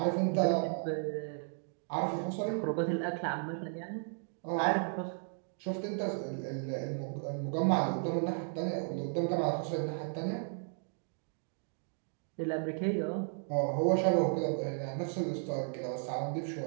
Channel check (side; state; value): left; silent; 55 dB below the other